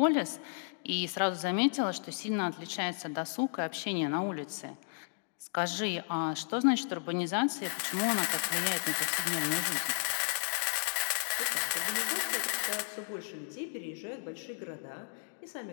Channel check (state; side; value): silent; right; digital silence